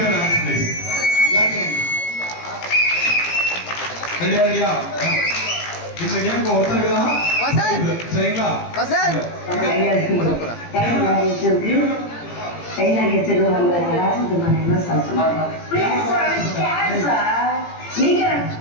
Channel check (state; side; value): late; right; 17 ms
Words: hands please ரெடியா இந்த கேம்க்கு ஒருத்தர் இருக்குதா சரிங்களா